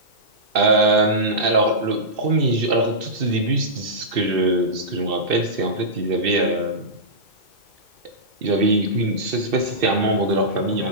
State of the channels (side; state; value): left; late; 2.6 ms